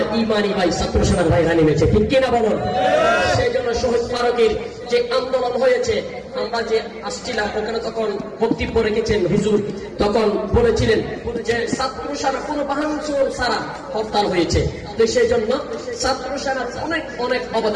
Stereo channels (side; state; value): both; identical; correlation 1.00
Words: ইমানি ভাই ছাত্র সেনার ভাইরা নেমেছে, ঠিক কিনা বলুন? সেই জন্য শহীদ ফারুকের যে আন্দোলন হয়েছে, আমরা যে আসছিলাম ওখানে তখন বক্তব্য রেখেছেন হুজুর, তখন বলেছিলেন যে ছাত্র সেনা কোন ভাঙচুর ছাড়া হরতাল হয়েছে। তো সেই জন্য ছাত্র সেনার অনেক অনেক